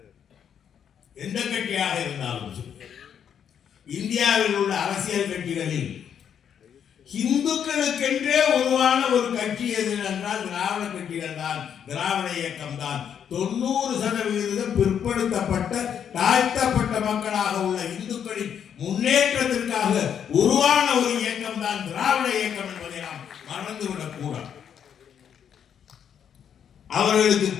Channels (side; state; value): right; quieter; 8.4 dB